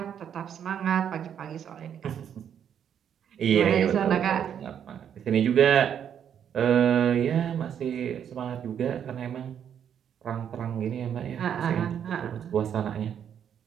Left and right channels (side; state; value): left; quieter; 8.8 dB